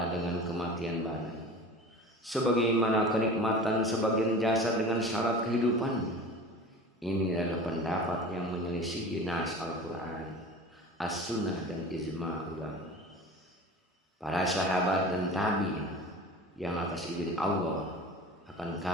dengan kematian badan. Sebagaimana kenikmatan sebagian jasad dengan syarat kehidupannya. Ini adalah pendapat yang menyelisihi nas Al-Quran, As-Sunnah dan Ijma' ulama, para sahabat dan tabi'in yang atas izin Allah akan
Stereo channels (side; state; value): both; normal; correlation 0.37